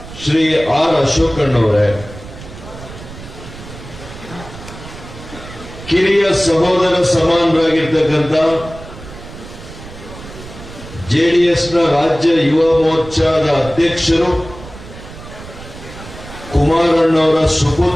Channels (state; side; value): noise; right; rumble, 15 dB below the sound